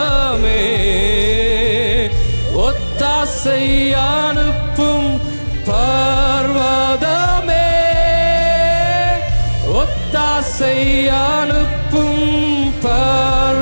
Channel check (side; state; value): both; inverted; correlation -1.00